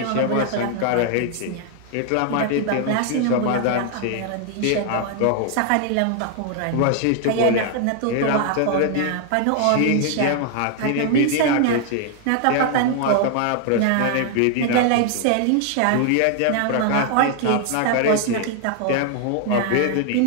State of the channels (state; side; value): different; both; correlation 0.00